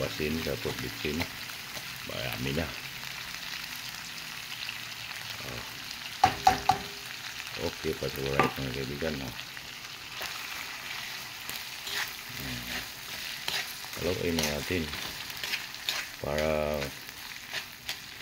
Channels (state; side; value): identical; both; correlation 1.00